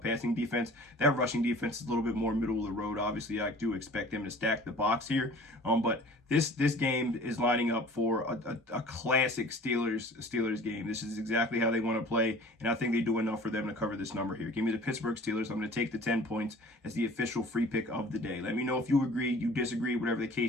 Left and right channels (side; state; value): both; normal; correlation 0.46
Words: defense. That rushing defense is a little bit more middle of the road. Obviously, I do expect them to stack the box here. But this game is lining up for a classic Steelers game. This is exactly how they want to play, and I think they do enough for them to cover this number here. Give me the Pittsburgh Steelers. I'm going to take the 10 points as the official free pick of the day. Let me know if you agree, you disagree, whatever the